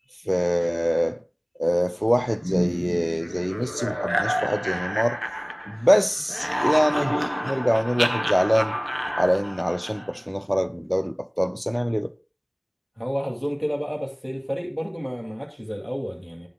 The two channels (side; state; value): both; identical; correlation 1.00